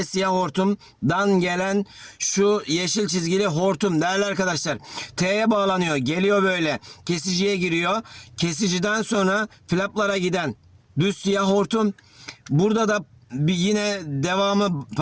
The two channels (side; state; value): both; identical; correlation 1.00